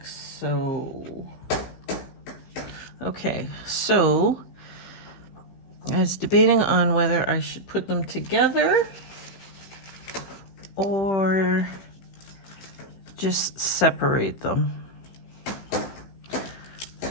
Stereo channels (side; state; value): right; late; 15 ms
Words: so. Okay, so I was debating on whether I should put them together or just separate them.